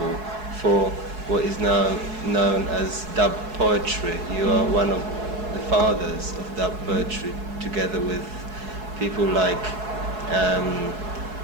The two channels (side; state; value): left; late; 4.7 ms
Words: for what is now known as dub poetry. You are one of the fathers of dub poetry, together with people like